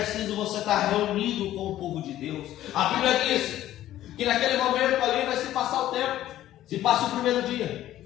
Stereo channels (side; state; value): right; quieter; 13.4 dB